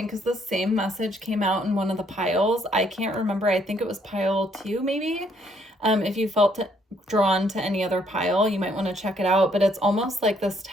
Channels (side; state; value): both; normal; correlation 0.68